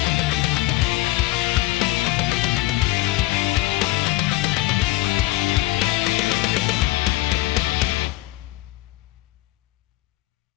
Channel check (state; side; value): quieter; right; 18.7 dB